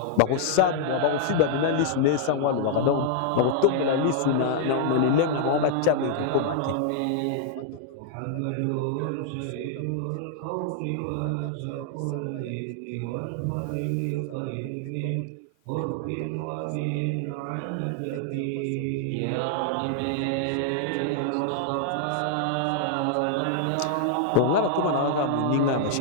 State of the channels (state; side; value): different; both; correlation 0.00